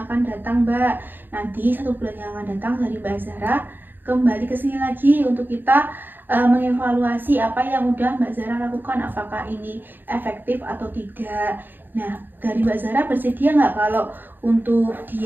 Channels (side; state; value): left; late; 0.093 ms